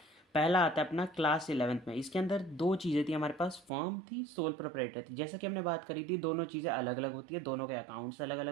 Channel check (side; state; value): left; drops out; at 3.7 s